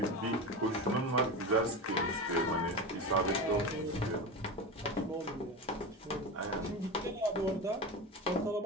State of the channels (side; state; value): both; normal; correlation 0.24